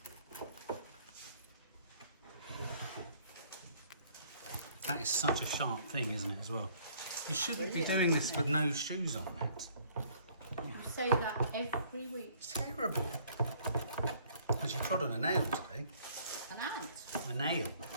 That is such a sharp thing, isn't it, as well? You shouldn't be doing this with no shoes on, Matt. You say that every week. It's terrible. Because you trod on a nail today. An ant. A nail.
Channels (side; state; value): both; inverted; correlation -0.60